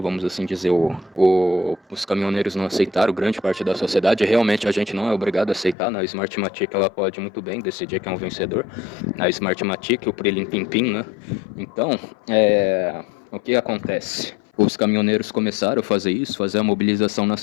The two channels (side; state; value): right; drops out; at 5.8 s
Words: assim dizer. Os caminhoneiros não aceitaram, grande parte da sociedade. Realmente a gente não é obrigado a aceitar, né? A Smartmatic ela pode muito bem decidir quem é um vencedor. A Smartmatic, o Prilim Pim Pim, né? Então, o que acontece? Os caminhoneiros começaram a fazer isso, fazer a mobilização